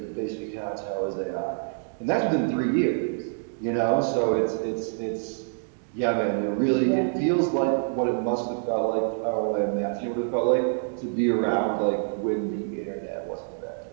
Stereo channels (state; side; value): silent; left; digital silence